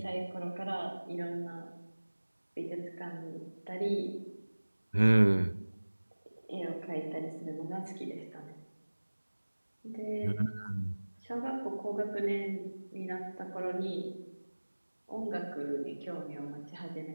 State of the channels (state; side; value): inverted; both; correlation -1.00